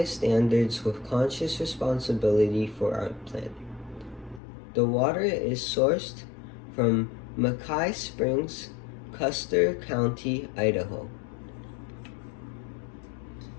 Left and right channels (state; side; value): drops out; right; at 4.4 s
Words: standards with conscious responsibility for our planet. The water is sourced from Mackay Springs, Custer County, Idaho.